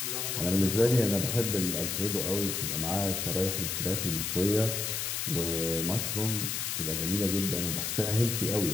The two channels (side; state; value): left; noise; hiss, 1 dB below the sound